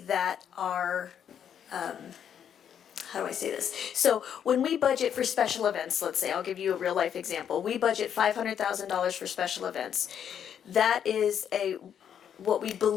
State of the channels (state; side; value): quieter; right; 8.7 dB